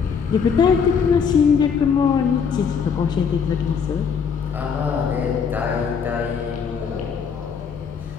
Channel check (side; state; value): right; quieter; 6.4 dB